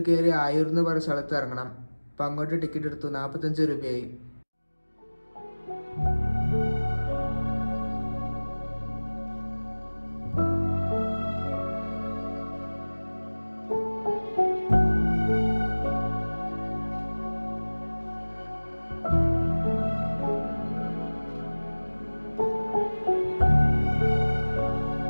കയറി ആയൂർ എന്ന് പറഞ്ഞ സ്ഥലത്ത് ഇറങ്ങണം. അപ്പം അങ്ങോട്ട് ടിക്കറ്റ് എടുത്തു. 45 രൂപയായി.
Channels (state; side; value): inverted; both; correlation -1.00